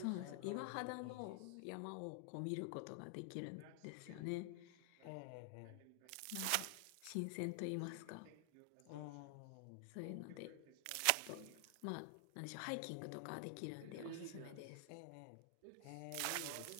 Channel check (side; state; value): both; different; correlation 0.00